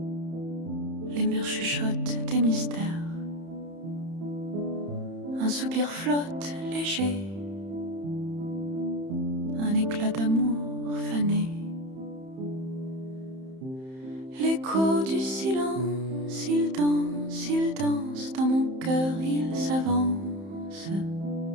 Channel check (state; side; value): late; left; 31 ms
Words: Les murs chuchotent des mystères. Un soupir flotte léger, un éclat d'amour fané. L'écho du silence, il danse dans mon cœur, il s'avance.